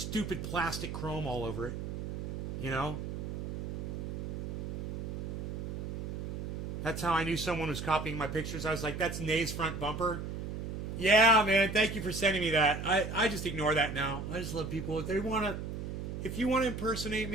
plastic chrome all over it. You know? That's how I knew someone was copying my pictures. I was like, that's Nay's front bumper. Yeah, man, thank you for sending me that. I just ignore that now. I just love people. If you want to impersonate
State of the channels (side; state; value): right; noise; hum, 5 dB below the sound